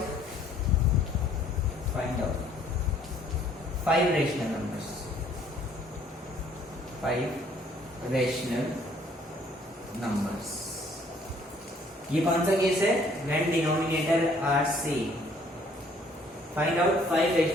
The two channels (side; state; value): both; normal; correlation 0.60